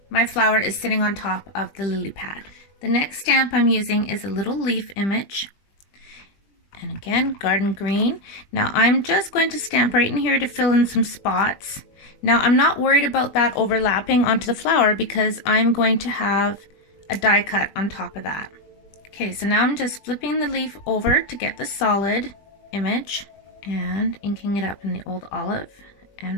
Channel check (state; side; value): late; right; 20 ms